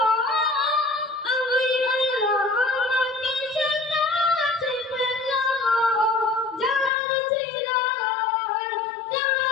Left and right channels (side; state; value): right; drops out; at 6.9 s